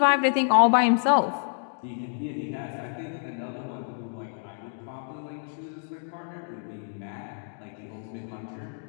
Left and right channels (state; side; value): silent; right; digital silence